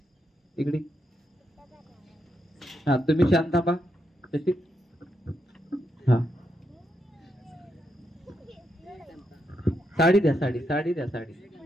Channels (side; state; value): both; normal; correlation 0.82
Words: इकडे. हा, तुम्ही शांत थांबा. तशी. हा, साडी द्या, साडी साडी द्या, साडी.